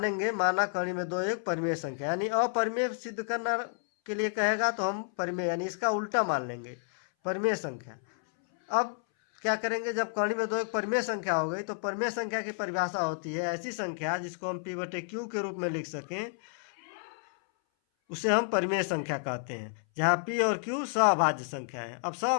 कर्ण में 2 एक परिमेय संख्या, यानी अपरिमेय सिद्ध करना के लिए कहेगा तो हम परिमेय यानी इसका उल्टा मान लेंगे परिमेय संख्या। अब क्या करेंगे, जब कर्ण में 2 एक परिमेय संख्या हो गई तो परिमेय संख्या की परिभाषा होती है ऐसी संख्या जिसको हम p/q के रूप में लिख सकें, उसे हम परिमेय संख्या कहते हैं, जहाँ p और q सहभाज्य संख्या है। अब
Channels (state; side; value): silent; right; 57 dB below the other